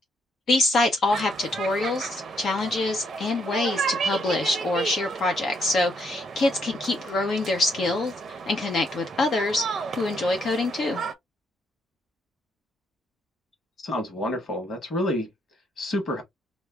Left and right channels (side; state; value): both; normal; correlation 0.73